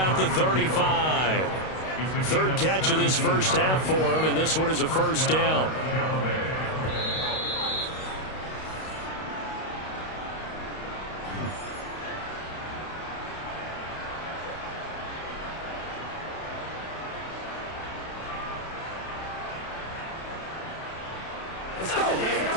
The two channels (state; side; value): late; right; 32 ms